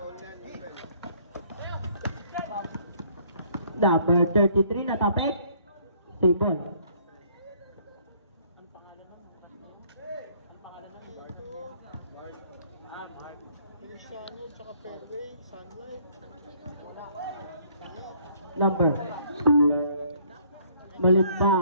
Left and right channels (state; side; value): inverted; both; correlation -0.62